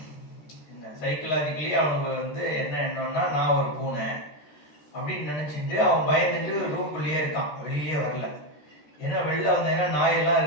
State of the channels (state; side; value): late; right; 13 ms